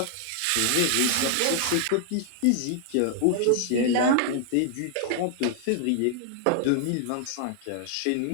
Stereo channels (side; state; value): both; different; correlation 0.00